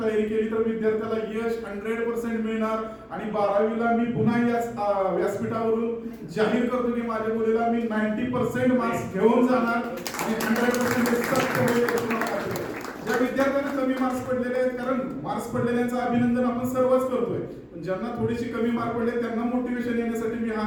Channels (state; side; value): identical; both; correlation 1.00